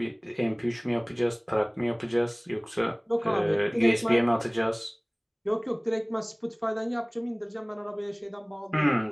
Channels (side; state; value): both; identical; correlation 1.00